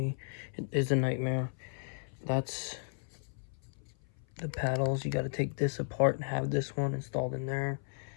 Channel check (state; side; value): silent; right; 55 dB below the other